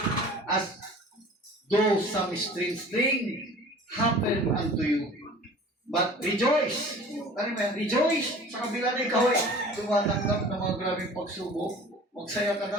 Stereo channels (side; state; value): both; normal; correlation 0.44